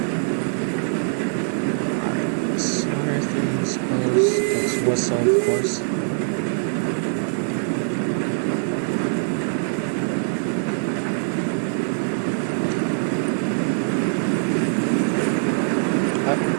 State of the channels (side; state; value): left; silent; 64 dB below the other